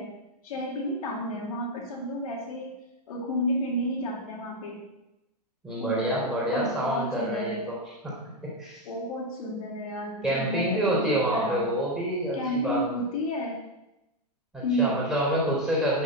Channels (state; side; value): normal; both; correlation 0.07